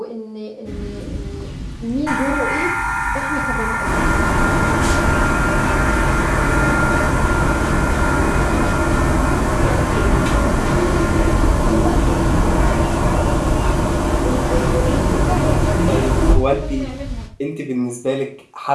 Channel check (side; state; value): both; identical; correlation 1.00